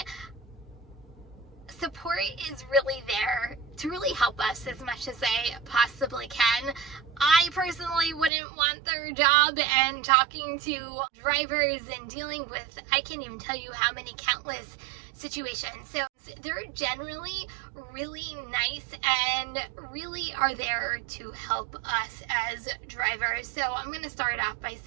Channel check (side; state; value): left; drops out; at 8.3 s